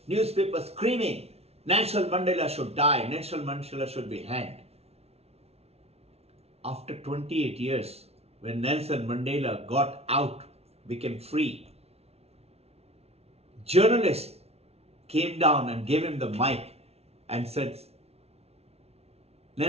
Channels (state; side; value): late; left; 0.30 ms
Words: newspapers screaming, Nelson Mandela should die, Nelson Mandela should be hanged. After 28 years, when Nelson Mandela got out, became free, journalists came down and gave him the mic and said,